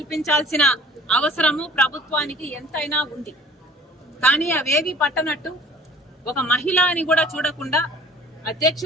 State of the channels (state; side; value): normal; both; correlation 0.49